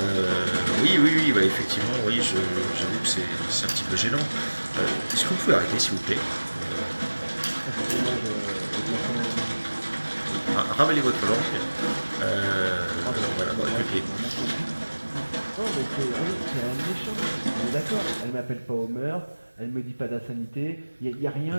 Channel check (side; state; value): both; inverted; correlation -1.00